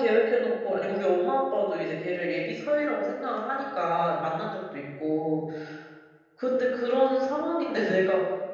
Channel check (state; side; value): identical; both; correlation 1.00